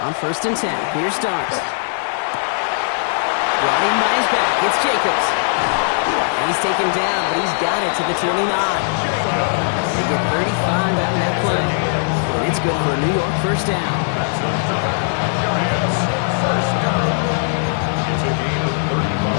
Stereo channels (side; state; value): right; silent; digital silence